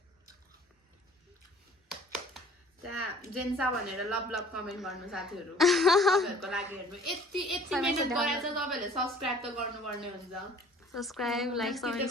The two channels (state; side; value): normal; both; correlation 0.50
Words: त्यहाँ जेन्सा भनेर लभ लभ कमेन्ट गर्नु साथीहरू तपाईँहरूको लागि हेर्नु यति मिहिनेत गरेर चाहिँ तपाईँहरूले सब्सक्राइब त गर्नुपर्ने हुन्छ सब्सक्राइब लाइक सबै